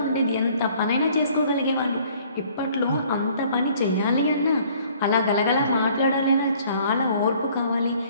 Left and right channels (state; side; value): inverted; both; correlation -0.57